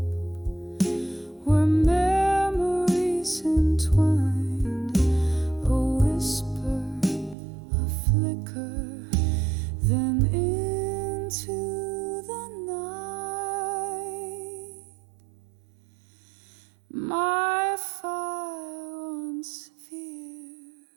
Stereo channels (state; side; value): drops out; left; at 7.4 s